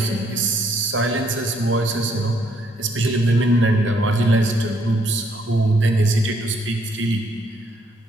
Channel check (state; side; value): normal; both; correlation 0.69